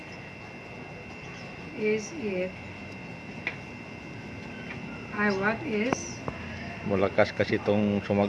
is it? What is Malakas kasi itong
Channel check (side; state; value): both; identical; correlation 1.00